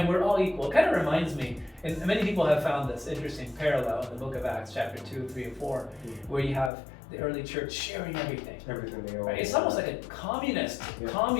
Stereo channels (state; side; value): drops out; right; at 6.7 s